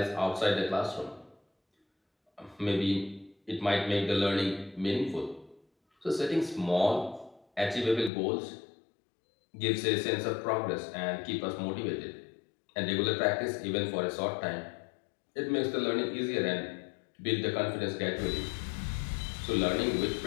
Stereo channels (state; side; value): drops out; right; at 8.1 s